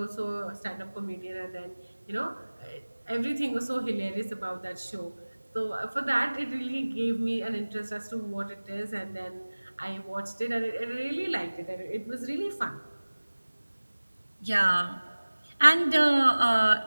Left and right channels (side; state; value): both; inverted; correlation -1.00